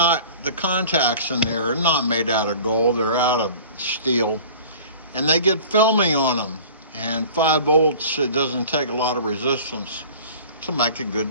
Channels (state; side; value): inverted; both; correlation -0.43